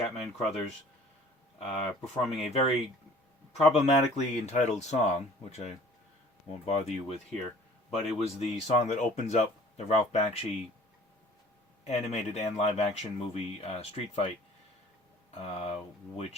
Crothers performing a very problematically entitled song, which I won't bother you with here. But it was the song that opens up the Ralph Bakshi animated and live-action movie Street Fight,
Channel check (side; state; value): both; normal; correlation 0.50